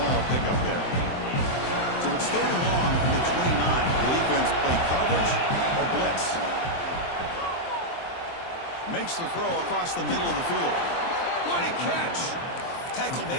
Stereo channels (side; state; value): right; late; 23 ms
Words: pickup there. So it's 3rd and long from the 29. The defense play coverage or blitz. Makes the throw across the middle of the field. What a catch! Tackle